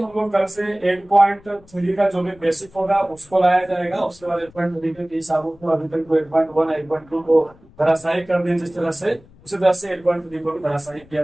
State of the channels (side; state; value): left; noise; rumble, 26 dB below the sound